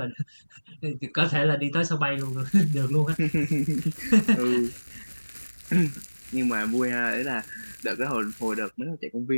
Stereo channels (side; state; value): both; inverted; correlation -1.00